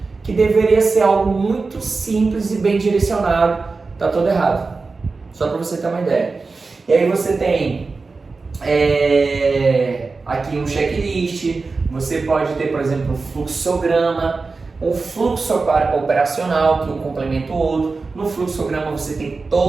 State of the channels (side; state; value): left; quieter; 4.1 dB